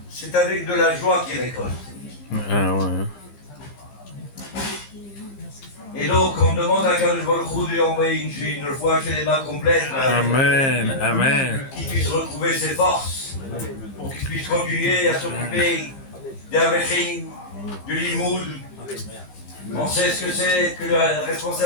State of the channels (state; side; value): late; right; 15 ms